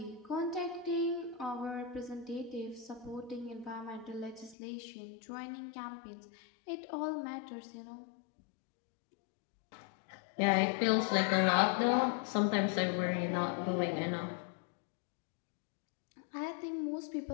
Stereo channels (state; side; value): drops out; right; at 4.5 s